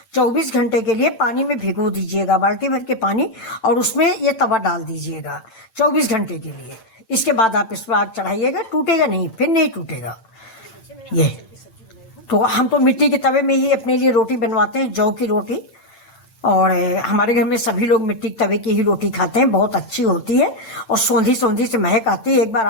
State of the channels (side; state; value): right; late; 8.9 ms